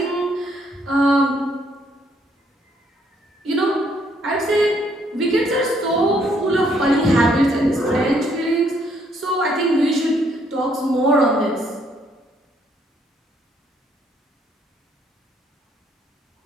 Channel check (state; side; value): normal; both; correlation 0.69